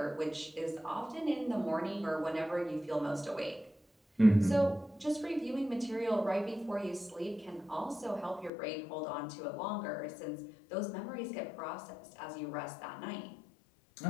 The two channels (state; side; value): drops out; right; at 8.5 s